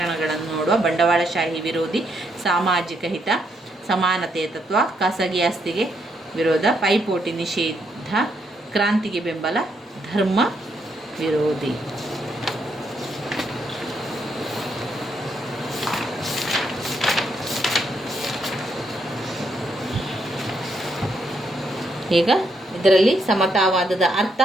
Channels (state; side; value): normal; both; correlation 0.76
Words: ನೋಡುವ. ಬಂಡವಾಳಶಾಹಿ ವಿರೋಧಿ, ಸಾಮಾಜಿಕ ಹಿತ, ಸಮಾನತೆಯ ತತ್ವ, ಖಾಸಗಿ ಆಸ್ತಿಗೆ ವಿರೋಧ, ಪೈಪೋಟಿ ನಿಷೇಧ, ಕ್ರಾಂತಿಗೆ ಬೆಂಬಲ, ಧರ್ಮ ವಿರೋಧಿ. ಈಗ ಇದರಲ್ಲಿ ಸಮತಾವಾದದ ಅರ್ಥ